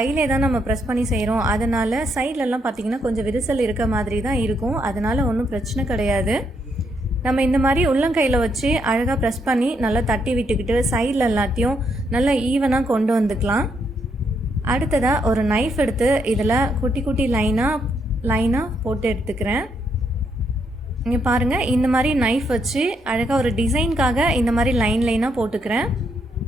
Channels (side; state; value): both; normal; correlation 0.76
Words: தான் நம்ம ப்ரெஸ் பண்ணி செய்கிறோம். அதனால் சைட்லலாம் பார்த்திங்கன்னா கொஞ்சம் விரிசல் இருக்க மாதிரி தான் இருக்கும். அதனால் ஒன்றும் பிரச்சனை கிடையாது. நம்ம இந்த மாதிரி உள்ளங்கையில் வச்சு அழகாக ப்ரெஸ் பண்ணி நல்லா தட்டி விட்டுக்கிட்டு சைடில் எல்லாத்தையும் நல்லா ஈவனாக கொண்டு வந்துக்கலாம். அடுத்ததாக ஒரு நைஃப் எடுத்து இதில் குட்டி குட்டி லைனாக போட்டு எடுத்துக்கிறேன். இங்கே பாருங்கள், இந்த மாதிரி நைஃப் வச்சு அழகாக ஒரு டிசைனுக்காக இந்த மாதிரி லைனாக போட்டுக்கிறேன்.